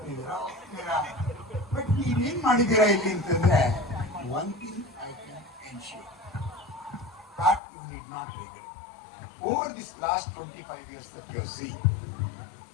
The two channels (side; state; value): right; drops out; at 7.6 s